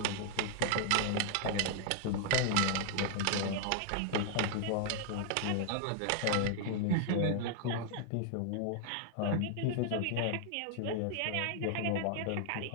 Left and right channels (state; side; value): different; both; correlation 0.00